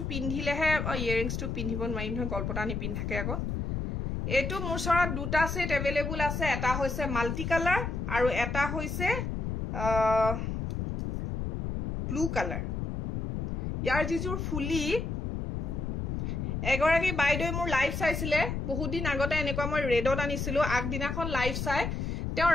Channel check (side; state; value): left; noise; rumble, 2 dB below the sound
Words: পিন্ধিলেহে ইয়াৰিংছটো পিন্ধিব নোৱাৰিম নহয় গল্পটা নিপিন্ধাকে আকৌ এটো মোৰ ওচৰত দুটা সেট এভেইলেবল আছে এটা হৈছে মাল্টি কালাৰ আৰু এটা হৈছে ব্লু কালাৰ ইয়াৰ যিজুৰ ফুলি এগৰাকী বাইদেউ মোৰ লাইভ চাইছিলে বহুত দিন আগতে এনেকুৱা মই ৰেডত আনিছিলো আগদিনাখন লাইভ চাই তেওঁ